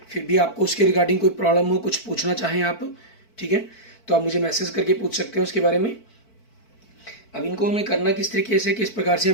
फिर भी आपको उसके रिगार्डिंग कोई प्रॉब्लम हो, कुछ पूछना चाहें आप, ठीक है, तो आप मुझे मैसेज करके पूछ सकते हैं उसके बारे में। अब इनको हमें करना किस तरीके से, किस प्रकार से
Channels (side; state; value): right; late; 4.5 ms